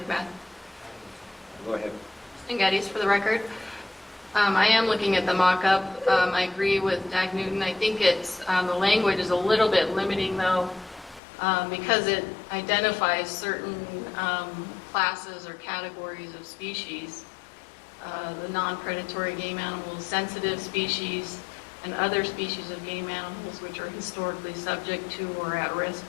Go ahead. Kristen Geddes for the record. I am looking at the mock-up. I agree with Dag Newton. I think it's, the language is a little bit limiting though, because it identifies certain classes or categories of species, the non-predatory game animals, sensitive species, and other species of game animals which are historically subject to or at risk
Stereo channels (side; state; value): right; drops out; at 11.2 s